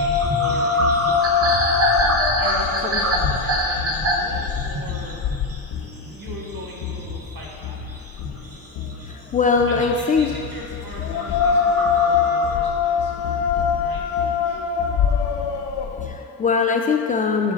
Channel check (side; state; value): right; quieter; 4.0 dB